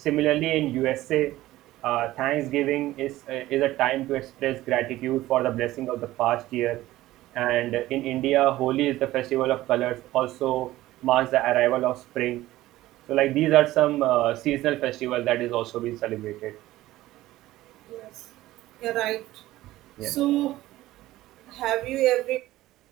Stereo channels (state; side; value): quieter; left; 16.2 dB